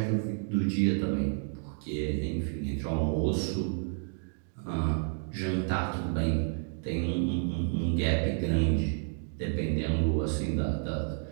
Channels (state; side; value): silent; left; 56 dB below the other